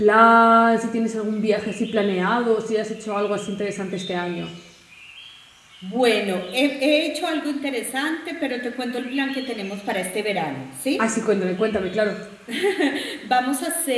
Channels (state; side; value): identical; both; correlation 1.00